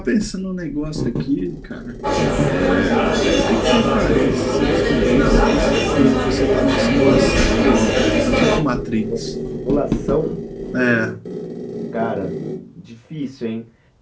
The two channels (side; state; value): both; identical; correlation 1.00